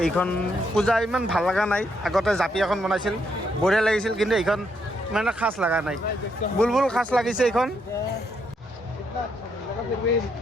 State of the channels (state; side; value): normal; both; correlation 0.76